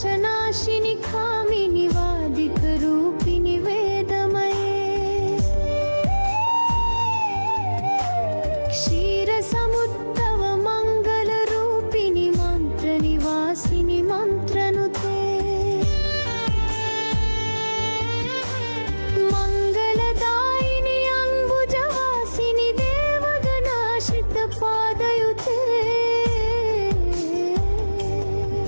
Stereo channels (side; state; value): both; inverted; correlation -1.00